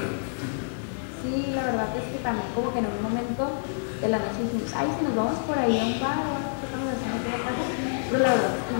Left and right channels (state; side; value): silent; right; digital silence